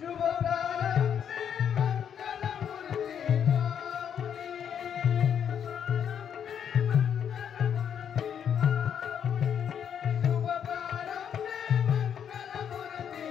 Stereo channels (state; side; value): quieter; right; 8.4 dB